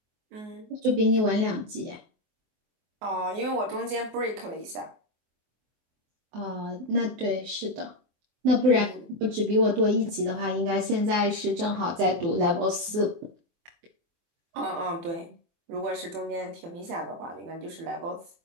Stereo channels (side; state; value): left; late; 24 ms